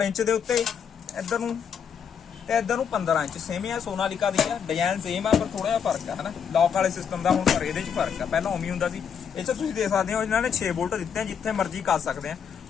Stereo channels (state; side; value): quieter; right; 7.4 dB